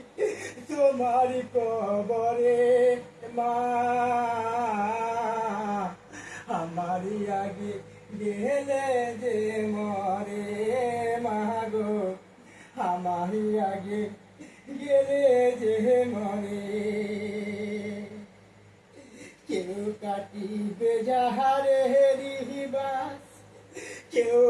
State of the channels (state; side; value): identical; both; correlation 1.00